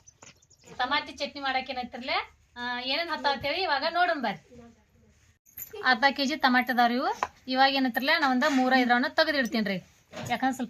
ಟಮಾಟಿ ಚಟ್ನಿ ಮಾಡಕ್ಕೆ ಏನೈತಿರಲ್ಲ ಏನೇನು ಹತ್ತೇಳಿ ಇವಾಗ ನೋಡೋಣ ಬರ್ರಿ. ಅರ್ಧ ಕೆಜಿ ಟಮಾಟೆ ಅದಾವ್ರಿ ಇವು. ಇವಾಗ ಏನೈತಿರಲ್ಲ ನಾವೊಂದು 3-5 ತೆಗೆದಿಡ್ತೀನಿ ರೀ. ಯಾಕಂದ್ರೆ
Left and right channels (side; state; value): both; identical; correlation 1.00